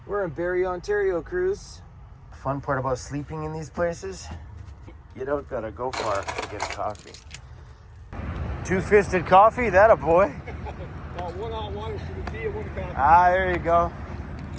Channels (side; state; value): both; identical; correlation 1.00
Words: We're in Barrie, Ontario, cruise. Fun part about sleeping in these places, you don't gotta go far to get a coffee. Two-fisted coffee, that a boy. One on one is the tea and one coffee. Ah, there you go.